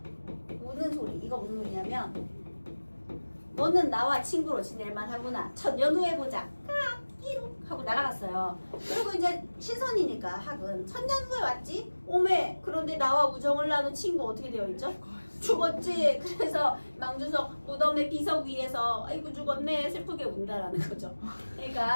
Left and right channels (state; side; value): inverted; both; correlation -1.00